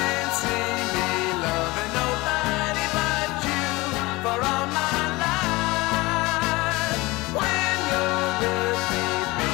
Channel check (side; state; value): right; quieter; 22.0 dB